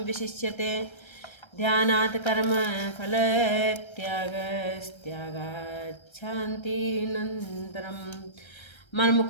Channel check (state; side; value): late; right; 1.3 ms